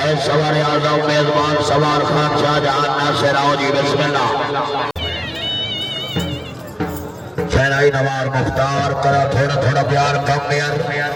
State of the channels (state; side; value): identical; both; correlation 1.00